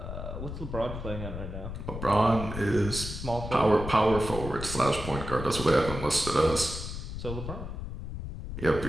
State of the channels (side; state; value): left; noise; rumble, 7 dB below the sound